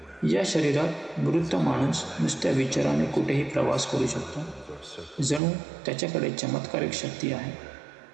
या शरीरात मृत माणूस नुसत्या विचाराने कुठेही प्रवास करू शकतो. जणू त्याच्याकडे चमत्कारिक शक्ती आहे.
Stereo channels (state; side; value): drops out; left; at 5.4 s